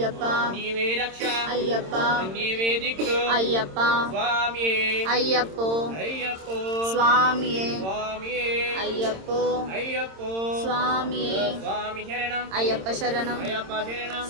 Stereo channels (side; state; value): left; late; 26 ms